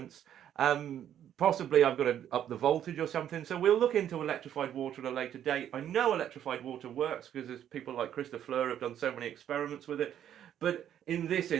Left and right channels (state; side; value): quieter; left; 10.3 dB